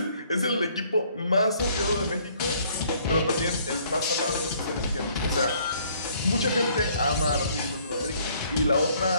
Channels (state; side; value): inverted; both; correlation -0.62